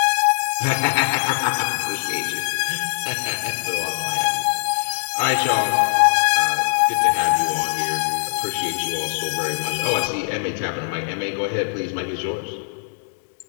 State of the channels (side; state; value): right; silent; digital silence